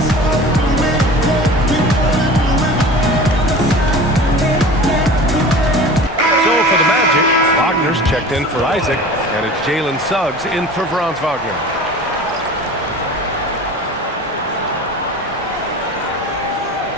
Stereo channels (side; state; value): both; normal; correlation 0.39